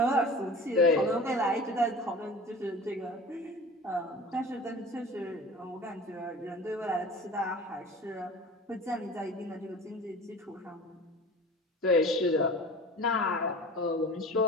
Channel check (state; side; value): normal; both; correlation 0.38